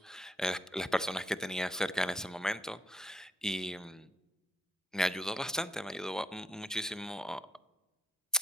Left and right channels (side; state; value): both; normal; correlation 0.76